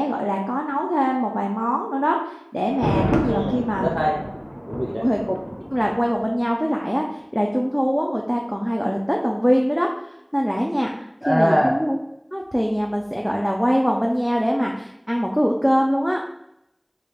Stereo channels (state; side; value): identical; both; correlation 1.00